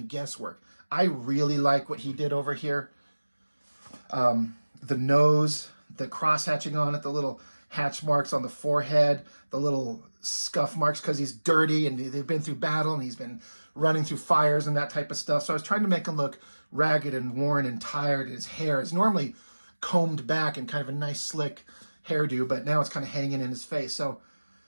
guesswork. I really like what he did over here. The nose, the cross hatching on it, the little hatch marks on the forehead, the little scuff marks because he's dirty and they've been through battle and he's been running through fires and that type of stuff. So I was trying to make him look ragged and worn and tired. His hair is normally combed back and kind of a nice slick hairdo, but now it's kind of hanging in his face. So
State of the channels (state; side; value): inverted; both; correlation -1.00